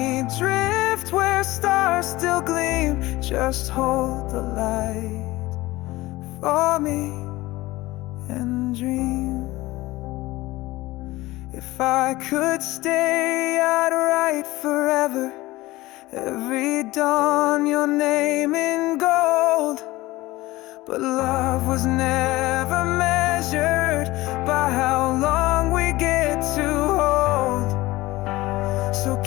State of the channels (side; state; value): right; quieter; 19.0 dB